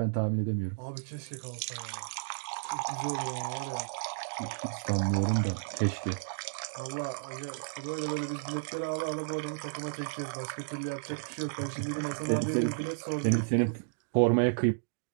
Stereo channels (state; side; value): silent; left; digital silence